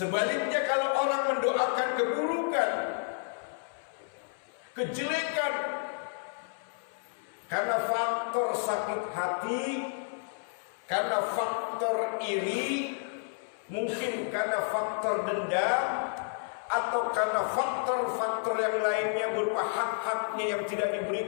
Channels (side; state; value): right; silent; 57 dB below the other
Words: kalau orang mendoakan keburukan, kejelekan, karena faktor sakit hati, karena faktor iri, mungkin karena faktor dendam, atau karena faktor-faktor yang lainnya berupa hak-haknya yang tidak